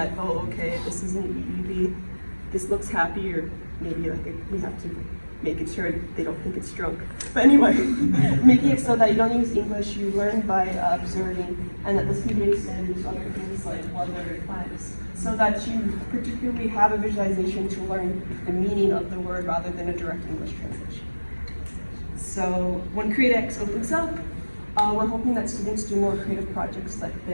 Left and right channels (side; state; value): both; inverted; correlation -1.00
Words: oh, okay, this is an EEV, this looks happy, or maybe like we have to make it sure they don't think it's drunk. But anyway, making it so that you don't use English, you learn by observing, and that this can be based in other things like weather and climates, so that you particularly have a visualization to learn the meaning of the word rather than a direct English translation. So when CreateX opens up, we're hoping that students do more creative projects like